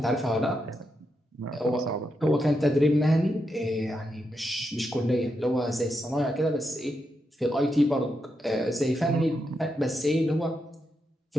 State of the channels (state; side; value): normal; both; correlation 0.84